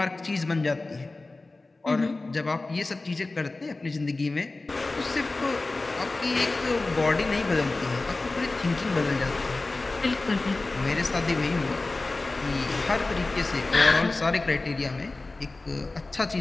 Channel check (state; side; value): quieter; right; 3.2 dB